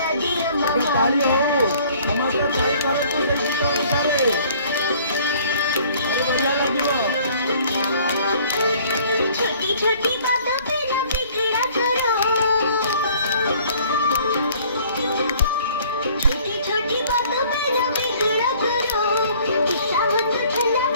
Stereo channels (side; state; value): both; inverted; correlation -0.56